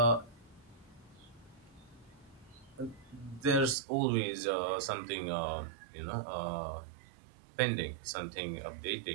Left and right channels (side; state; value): left; drops out; at 3.8 s